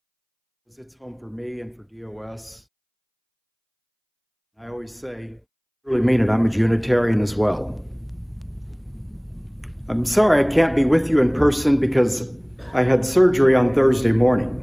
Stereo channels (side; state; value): both; identical; correlation 1.00